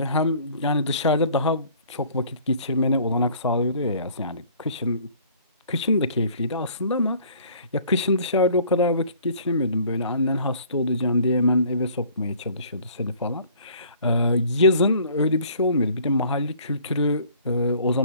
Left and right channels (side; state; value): both; inverted; correlation -0.54